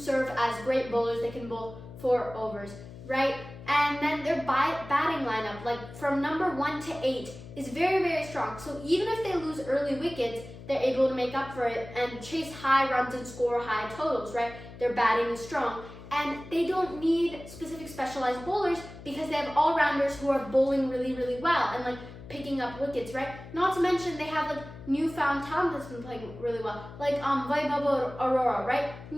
as great bowlers. They can bowl 4 overs, right? And then their batting lineup, like from number 1 to 8, is very, very strong. So even if they lose early wickets, they're able to make up for it and chase high runs and score high totals, right? Their batting is strong. And they don't need specific specialized bowlers because they have all-rounders who are bowling really, really well and like picking up wickets, right? Not to mention they have like newfound talent that's been playing really well, like Vaibhav Arora, right?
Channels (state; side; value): noise; left; hum, 15 dB below the sound